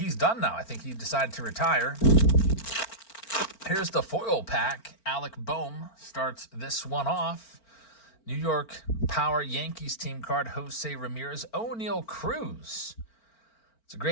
done now. I think he decided to retire. Here's the foil pack. Alec Boehm starts this one off. New York Power Yankees team card, Jose Ramirez. O'Neal Cruz. It's a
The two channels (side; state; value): right; late; 4.4 ms